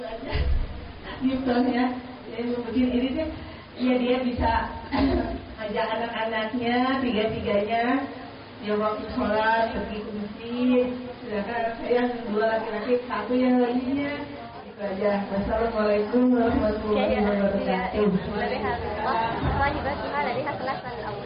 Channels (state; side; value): identical; both; correlation 1.00